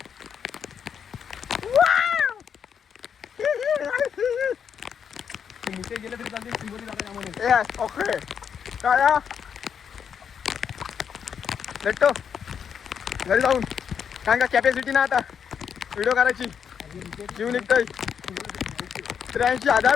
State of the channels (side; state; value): right; quieter; 7.5 dB